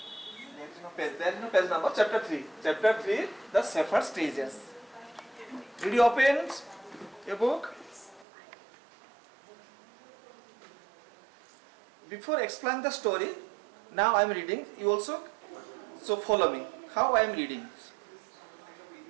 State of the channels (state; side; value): drops out; left; at 8.2 s